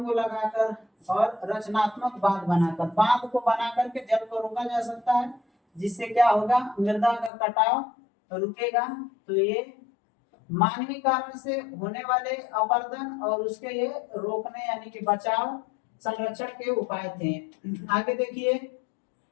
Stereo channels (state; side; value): drops out; right; at 7.3 s